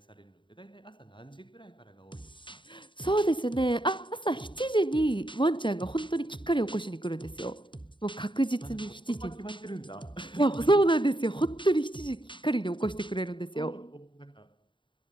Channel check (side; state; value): right; late; 0.23 ms